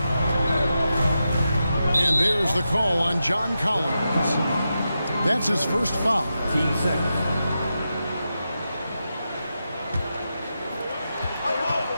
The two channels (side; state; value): both; inverted; correlation -0.89